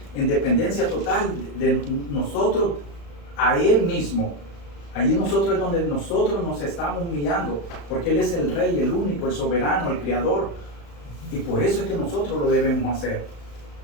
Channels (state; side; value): late; right; 35 ms